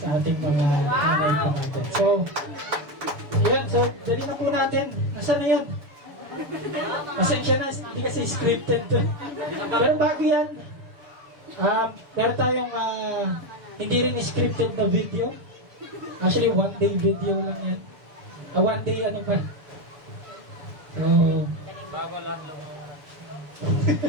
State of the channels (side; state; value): left; late; 6.9 ms